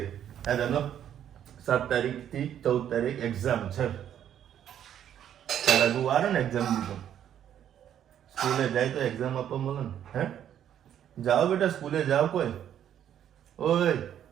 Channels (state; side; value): quieter; left; 10.1 dB